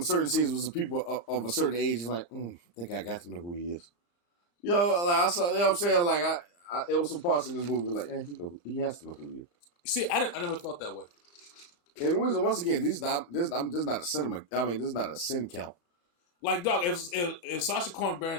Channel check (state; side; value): late; right; 35 ms